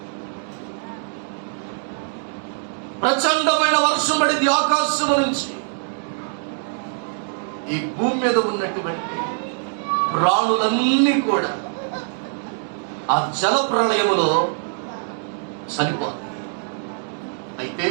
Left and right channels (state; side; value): silent; left; 64 dB below the other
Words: ప్రచండమైన వర్షం పడింది ఆకాశము నుంచి. ఈ భూమి మీద ఉన్నటువంటి ప్రాణులన్నీ కూడా ఆ జల ప్రళయములో చనిపోతాయి. అయితే